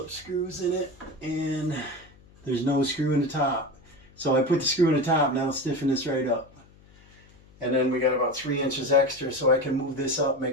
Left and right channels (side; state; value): left; noise; hum, 26 dB below the sound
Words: screws in it, and there's no screw in the top. So I put the screw in the top, now I'll stiffen this right up. And then we got about 3 inches extra, so I can move this up,